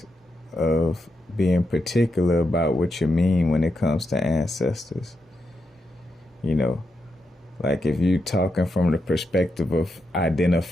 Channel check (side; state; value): both; normal; correlation 0.84